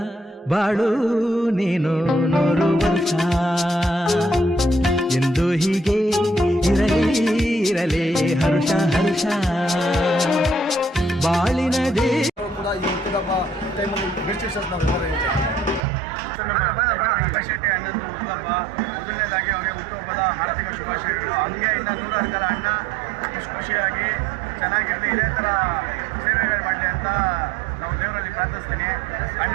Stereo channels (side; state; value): left; drops out; at 15.8 s